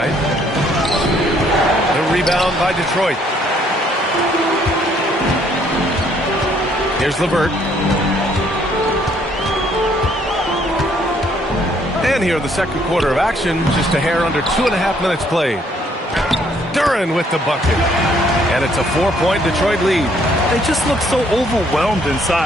The rebound by Detroit. Here's LeVert. And here in the second quarter of action, just a hair under 2.5 minutes played. Duran with the bucket. And it's a 4-point Detroit lead. They just look so overwhelmed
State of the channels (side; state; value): both; normal; correlation 0.66